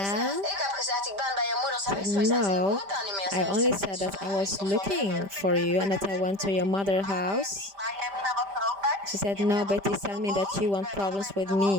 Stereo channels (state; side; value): late; left; 5.1 ms